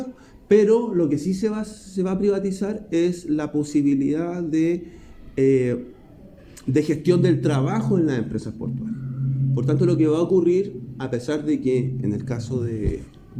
pero lo que sí se va a privatizar es la posibilidad de gestión del trabajo en las empresas portuarias. Por tanto, lo que va a ocurrir, a pesar de que en el caso de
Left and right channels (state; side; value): identical; both; correlation 1.00